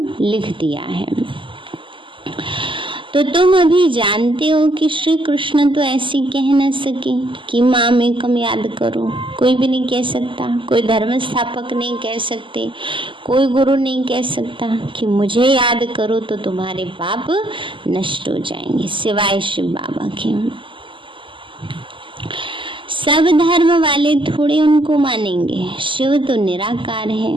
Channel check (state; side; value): late; left; 0.25 ms